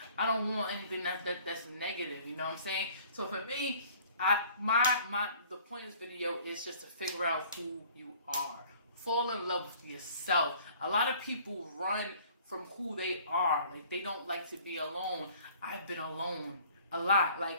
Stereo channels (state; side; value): inverted; both; correlation -0.53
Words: I don't want anything that's negative. You know what I'm saying? So for me, the point of this video is just to figure out who you are. Fall in love with yourself. A lot of people run from who they are. Like, they don't like to be alone. I've been alone a lot.